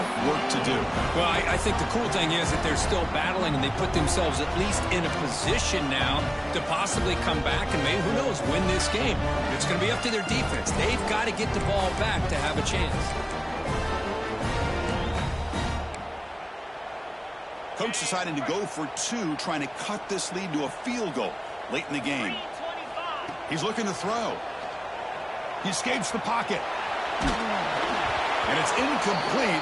work to do. Well, I think the cool thing is that they're still battling, and they put themselves at least in a position now to possibly come back and maybe, who knows, win this game. It's going to be up to their defense. They've got to get the ball back to have a chance. Coach deciding to go for 2, trying to cut this lead to a field goal late in the game. He's looking to throw. He escapes the pocket. And it's incomplete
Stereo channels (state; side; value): identical; both; correlation 1.00